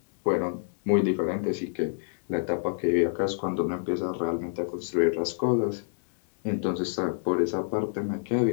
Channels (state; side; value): silent; right; digital silence